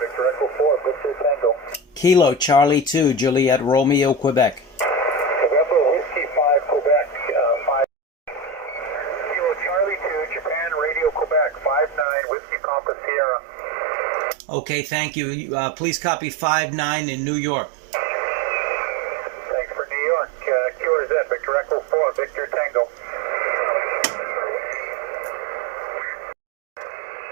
Victor Echo 4, Victor Tango. Kilo Charlie 2, Juliet Romeo, Quebec. November Whiskey 5, Quebec, 5. Kilo Charlie 2, Japan Radio Quebec, 59, Whiskey Papa Sierra. Okay, thank you. Please copy 59 in New York. Thanks for New York. QRZ, Victor Echo 4, Victor Tango.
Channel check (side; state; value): left; drops out; at 12.1 s